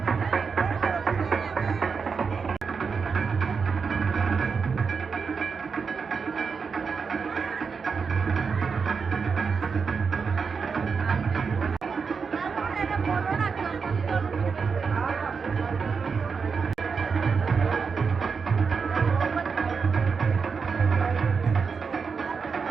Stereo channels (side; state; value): left; quieter; 5.5 dB